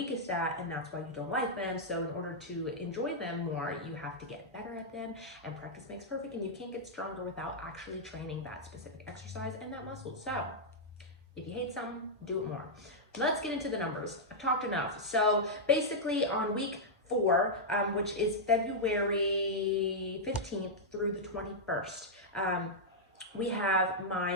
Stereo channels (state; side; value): normal; both; correlation -0.06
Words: at, and that's why you don't like them. So in order to enjoy them more, you have to get better at them, and practice makes perfect, and you can't get stronger without actually training that specific exercise and that muscle. So if you hate something, do it more. Let's get into the numbers. I've talked enough. So basically on week 4, which is February 15th through the 21st, we have